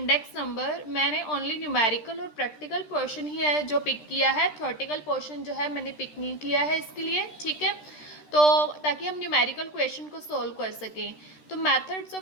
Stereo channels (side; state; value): right; late; 13 ms